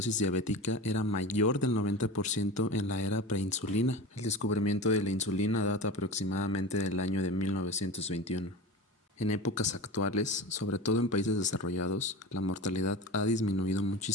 diabética era mayor del 90% en la era preinsulina. El descubrimiento de la insulina data aproximadamente del año de 1921. En épocas actuales, sobre todo en países desarrollados, la mortalidad ha disminuido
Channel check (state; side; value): normal; both; correlation 0.30